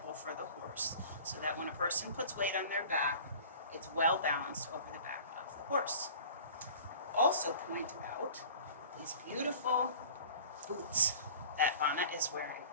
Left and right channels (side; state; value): both; inverted; correlation -0.44